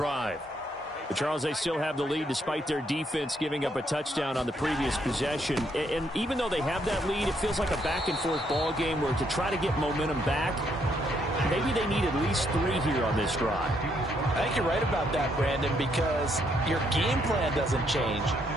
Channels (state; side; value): normal; both; correlation 0.73